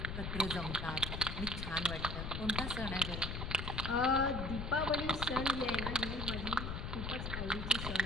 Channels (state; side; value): noise; left; rumble, 4 dB below the sound